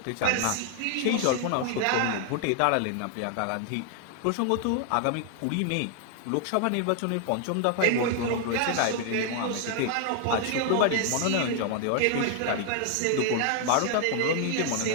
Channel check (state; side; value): different; both; correlation 0.00